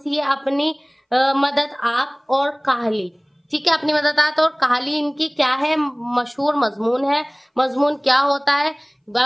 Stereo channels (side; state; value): both; identical; correlation 1.00